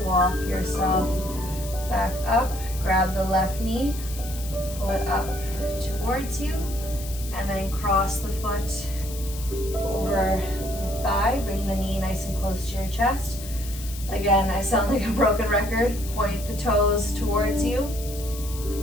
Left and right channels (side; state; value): left; noise; hiss, 13 dB below the sound